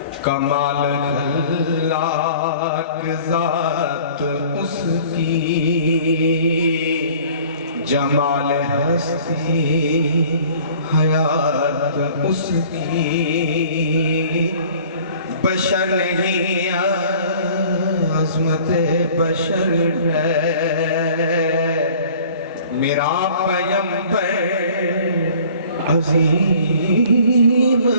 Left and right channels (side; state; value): both; inverted; correlation -0.50